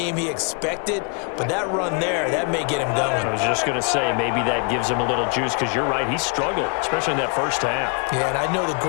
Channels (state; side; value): quieter; right; 37.6 dB